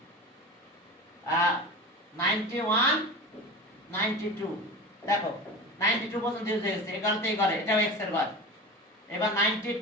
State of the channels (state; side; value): normal; both; correlation 0.30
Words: 91, 92 দেখো 92 পর্যন্ত ইউজ হয়ে গেছে। এই কারণে এই ঘরে এটাও এক্স এর ঘর। এবার